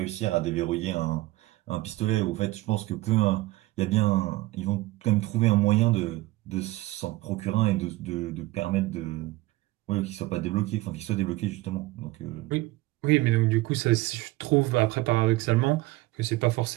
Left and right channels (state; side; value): quieter; left; 19.4 dB